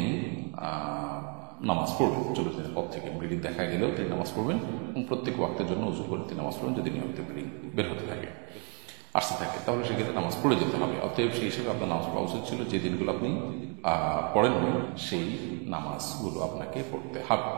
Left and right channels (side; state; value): left; quieter; 36.8 dB